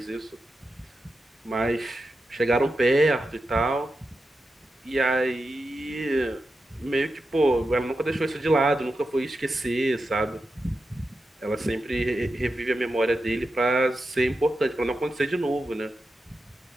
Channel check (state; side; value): normal; both; correlation 0.90